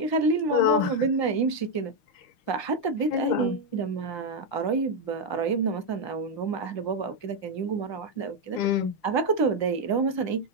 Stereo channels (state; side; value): late; right; 5.8 ms